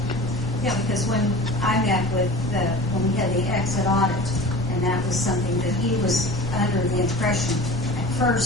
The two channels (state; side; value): noise; left; rumble, 13 dB below the sound